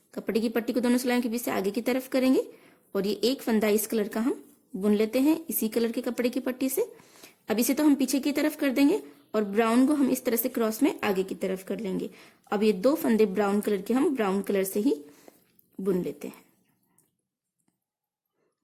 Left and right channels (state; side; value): identical; both; correlation 1.00